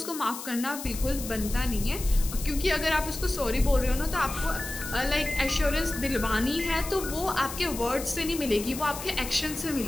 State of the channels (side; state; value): left; noise; hiss, 9 dB below the sound